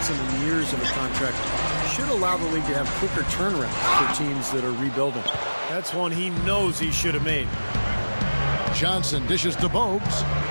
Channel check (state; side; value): inverted; both; correlation -1.00